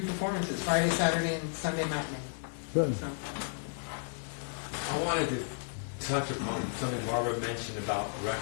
performances, Friday, Saturday, and Sunday matinee. Good. So, I wanted to touch upon something Barbara mentioned about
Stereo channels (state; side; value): silent; right; digital silence